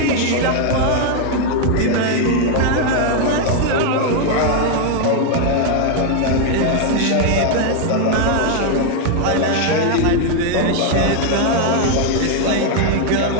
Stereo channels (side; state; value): both; different; correlation 0.00